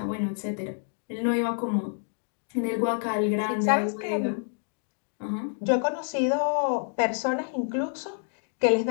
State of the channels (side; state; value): right; silent; 59 dB below the other